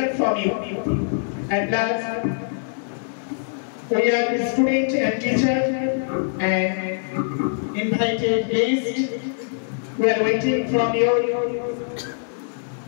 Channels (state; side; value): silent; right; digital silence